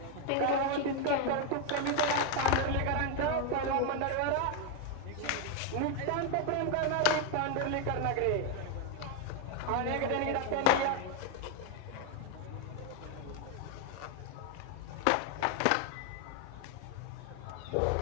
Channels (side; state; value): both; different; correlation 0.01